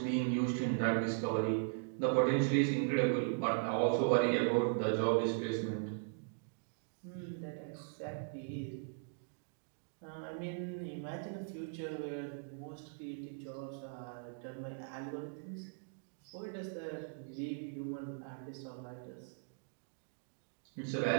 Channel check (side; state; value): left; silent; digital silence